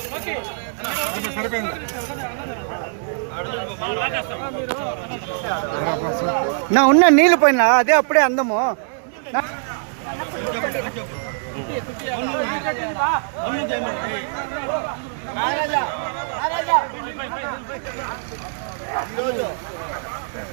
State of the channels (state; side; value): silent; left; digital silence